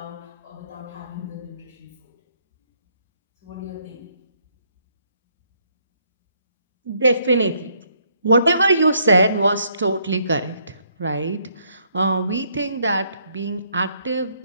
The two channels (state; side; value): inverted; both; correlation -0.69